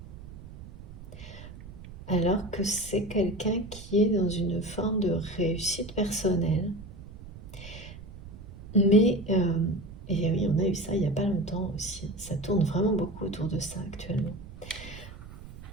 Alors que c'est quelqu'un qui est dans une forme de réussite personnelle. Mais, et oui, on a eu ça il n'y a pas longtemps aussi. Ça tourne vraiment beaucoup autour de ça actuellement.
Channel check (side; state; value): right; noise; rumble, 15 dB below the sound